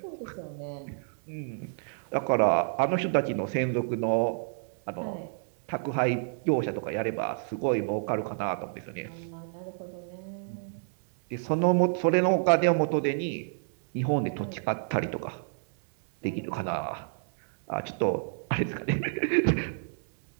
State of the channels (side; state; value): left; silent; digital silence